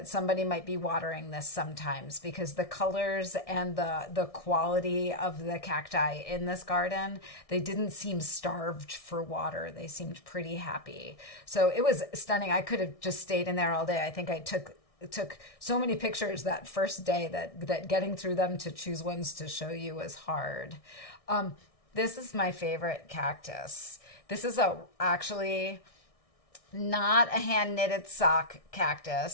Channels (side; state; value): right; late; 1.6 ms